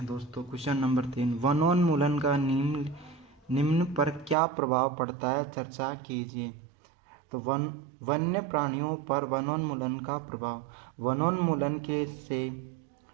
दोस्तों। क्वेश्चन नंबर 3, वनोन्मूलन का निम्न पर क्या प्रभाव पड़ता है, चर्चा कीजिए। तो वन्य प्राणियों पर वनोन्मूलन का प्रभाव।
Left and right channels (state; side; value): drops out; left; at 4.4 s